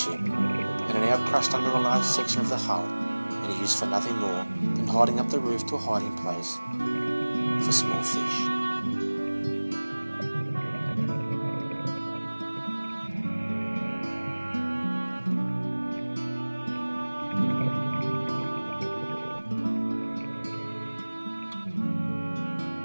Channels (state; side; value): inverted; both; correlation -1.00